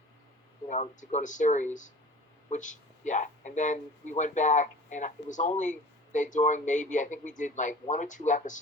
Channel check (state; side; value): normal; both; correlation 0.43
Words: to go to series, and then we went back, and it was only during maybe I think we did like 1 or 2